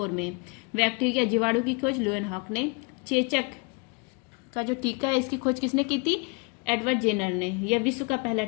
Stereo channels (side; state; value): right; quieter; 31.1 dB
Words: में। बैक्टीरिया जीवाणु की खोज लुएन हॉक ने। चेचक का जो टीका है इसकी खोज किसने की थी? एडवर्ड जेनर ने। यह विश्व का पहला